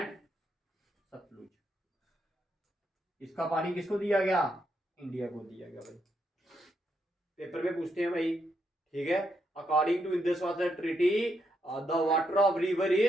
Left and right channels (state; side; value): normal; both; correlation 0.79